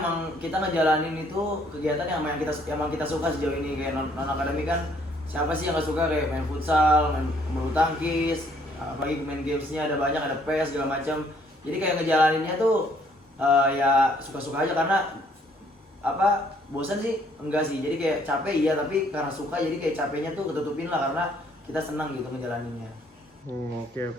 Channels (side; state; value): both; normal; correlation 0.65